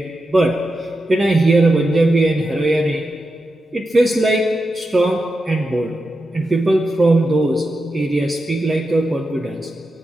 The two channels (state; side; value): normal; both; correlation 0.89